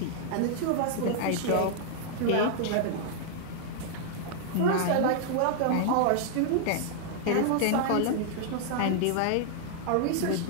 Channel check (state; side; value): different; both; correlation -0.01